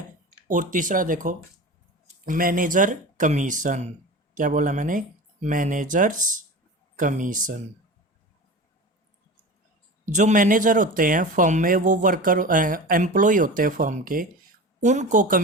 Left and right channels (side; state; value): both; normal; correlation 0.32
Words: और तीसरा देखो मैनेजर कमीशन। क्या बोला मैंने? Managers commission. जो मैनेजर होते हैं फर्म में, वो वर्कर एम्प्लॉय होते हैं फर्म के, उनको